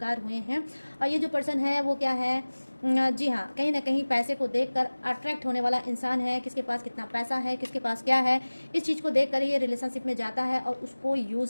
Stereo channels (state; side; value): inverted; both; correlation -1.00